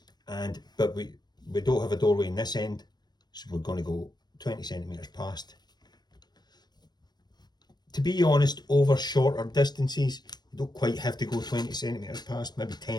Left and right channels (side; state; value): right; late; 0.20 ms